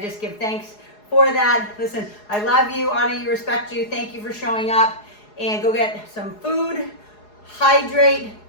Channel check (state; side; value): late; right; 4.8 ms